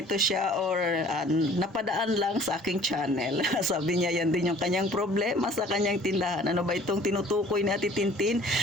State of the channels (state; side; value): normal; both; correlation 0.51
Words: siya or napadaan lang sa aking channel. Sabi niya yan din yung kanyang problema sa kanyang tindahan. Ano ba itong tinutukoy ni Ate Tintin?